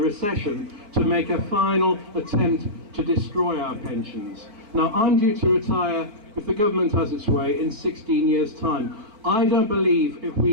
to make a final attempt to destroy our pensions. Now, I'm due to retire, if the government has its way, in 16 years' time. I don't believe if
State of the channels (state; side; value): late; left; 4.6 ms